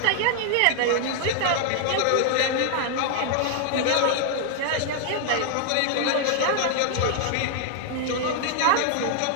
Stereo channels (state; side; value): different; both; correlation 0.00